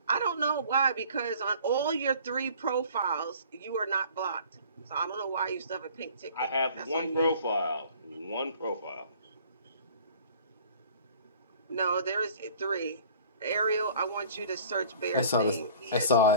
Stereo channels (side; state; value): both; inverted; correlation -0.49